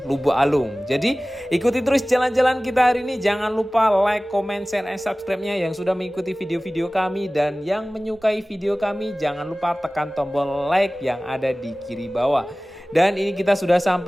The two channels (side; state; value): both; normal; correlation 0.98